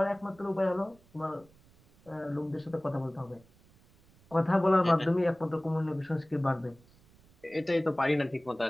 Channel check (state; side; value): noise; right; rumble, 29 dB below the sound